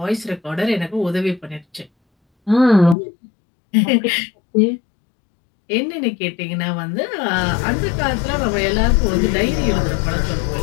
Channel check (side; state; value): right; drops out; at 3.0 s